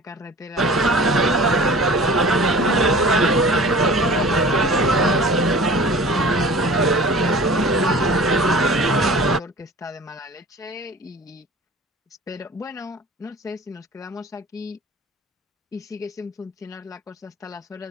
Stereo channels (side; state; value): both; normal; correlation 0.42